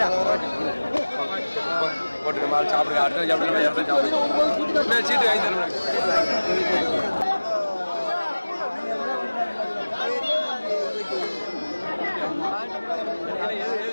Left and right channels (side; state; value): both; inverted; correlation -1.00